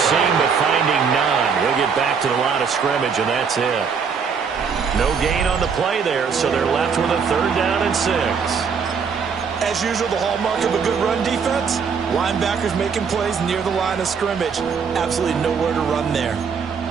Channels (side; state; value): left; quieter; 6.1 dB